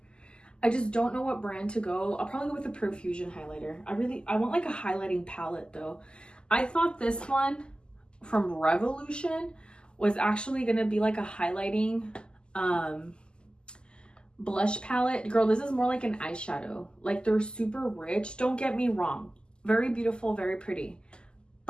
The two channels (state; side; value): late; right; 0.048 ms